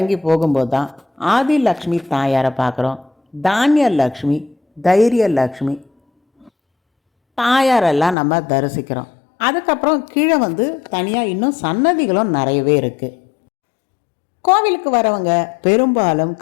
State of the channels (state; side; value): drops out; right; at 8.2 s